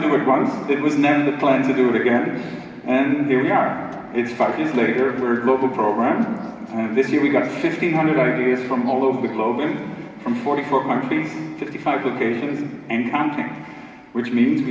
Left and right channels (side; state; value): both; identical; correlation 1.00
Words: it once. It was never the plan to do it again, and here we are. It's 5 years later, we're a global program. This year we got 1,500 ideas from all over the globe from 44 countries, 55 locations, and counting. Which means